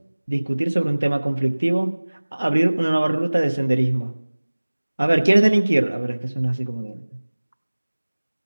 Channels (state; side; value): inverted; both; correlation -1.00